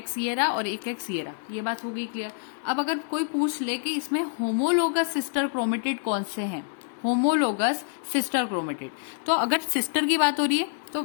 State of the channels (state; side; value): silent; right; digital silence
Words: ये रहा और एक एक्स ये रहा, ये बात हो गई क्लियर। अब अगर कोई पूछ ले कि इसमें होमोलोगस सिस्टर क्रोमेटिड कौन से हैं, होमोलोगस सिस्टर क्रोमेटिड, तो अगर सिस्टर की बात हो रही है